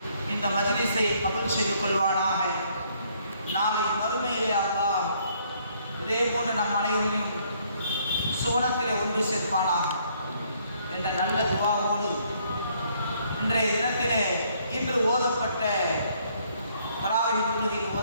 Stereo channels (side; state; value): both; inverted; correlation -0.67